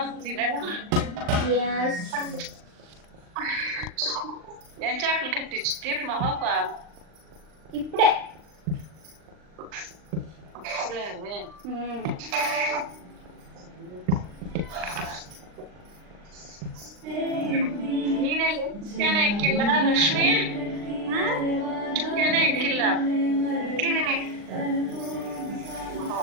తినడం. ఏం చేపలు కట్టించి తీపి మా పాప ఇప్పుడే. ನೀನೇ ಚಿಕನ್ ಹಾಕಿಲ್ಲ ಲಕ್ಷ್ಮಿ? ಚಿಕನ್ ಹಾಕಿಲ್ಲ. ಹಾಕಿದ್ದೀನಿ.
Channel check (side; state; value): left; late; 39 ms